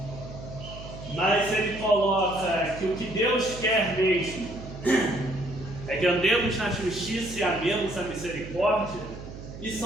mas ele coloca que o que Deus quer mesmo é que andemos na justiça e amemos a misericórdia,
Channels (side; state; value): right; noise; hum, 12 dB below the sound